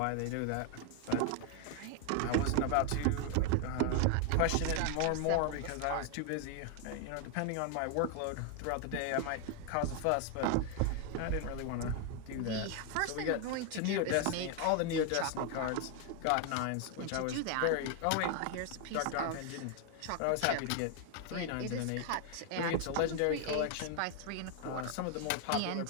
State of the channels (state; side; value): different; both; correlation 0.00